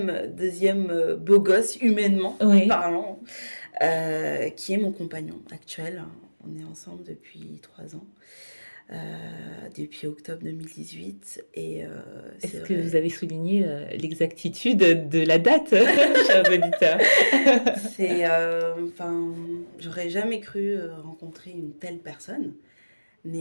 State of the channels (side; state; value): both; inverted; correlation -1.00